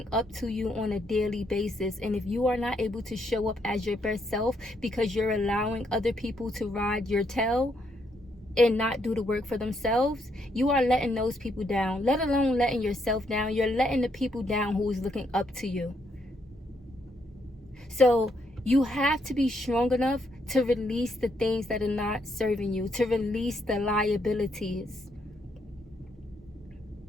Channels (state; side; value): normal; both; correlation 0.75